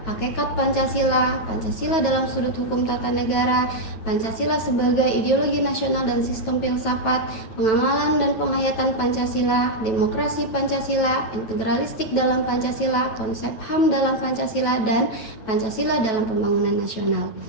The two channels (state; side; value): late; right; 9.1 ms